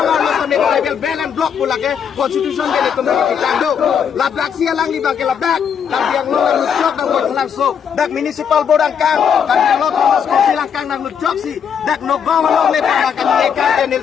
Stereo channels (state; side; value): quieter; right; 7.6 dB